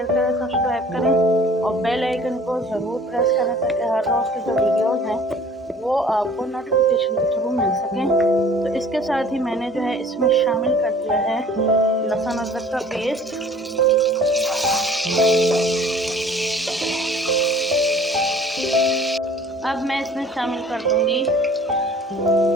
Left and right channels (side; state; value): both; normal; correlation 0.50